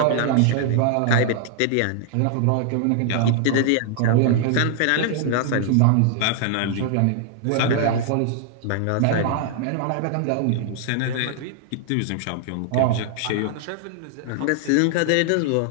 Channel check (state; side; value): different; both; correlation -0.01